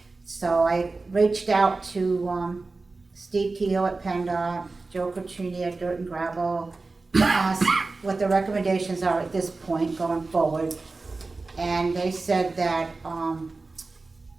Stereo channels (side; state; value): left; quieter; 3.7 dB